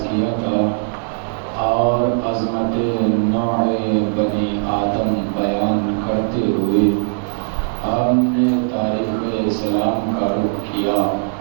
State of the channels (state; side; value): silent; left; digital silence